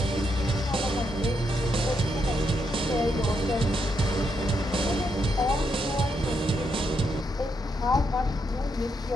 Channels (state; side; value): normal; both; correlation 0.79